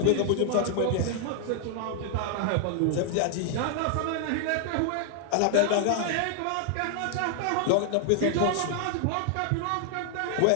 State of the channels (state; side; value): different; both; correlation 0.00